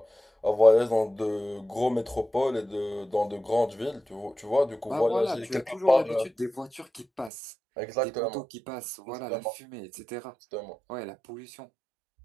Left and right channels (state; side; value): drops out; left; at 7.3 s